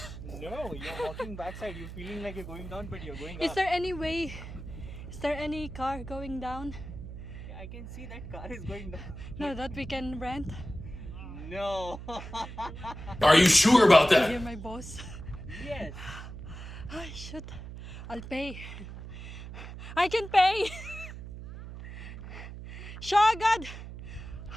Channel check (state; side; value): noise; right; hum, 11 dB below the sound